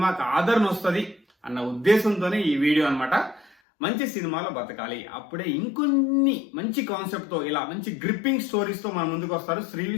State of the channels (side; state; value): right; drops out; at 3.6 s